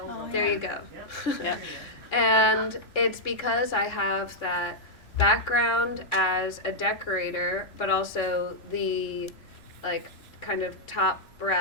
webinar. There you go. Yep. And it's because I have that background as a decorator, but also the kind of top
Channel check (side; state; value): right; late; 3.0 ms